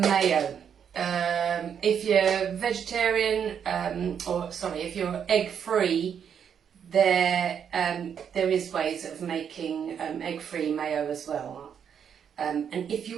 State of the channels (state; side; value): quieter; left; 7.9 dB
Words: If you're vegetarian, if you're egg-free, there is ways of making egg-free mayo as well. And if